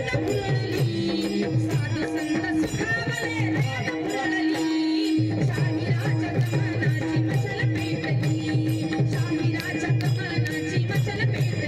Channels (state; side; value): identical; both; correlation 1.00